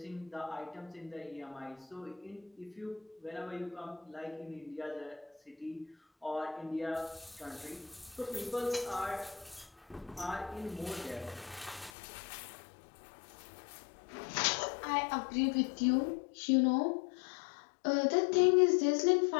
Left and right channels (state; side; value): drops out; right; at 11.9 s